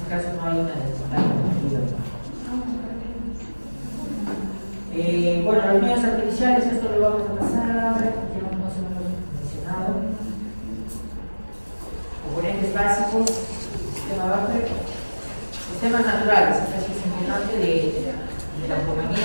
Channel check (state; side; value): inverted; both; correlation -1.00